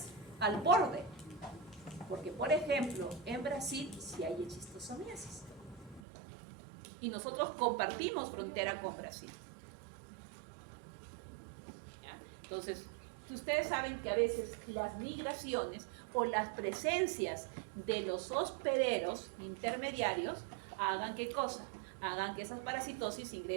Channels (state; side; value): drops out; left; at 6.0 s